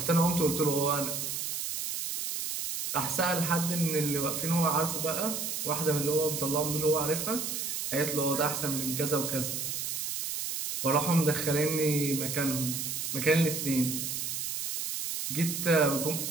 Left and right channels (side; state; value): right; noise; hiss, 3 dB below the sound